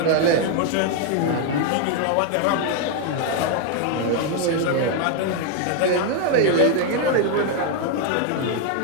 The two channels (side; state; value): both; different; correlation 0.00